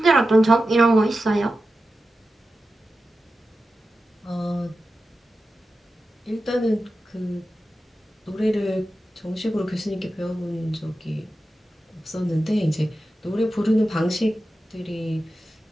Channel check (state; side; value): normal; both; correlation 0.92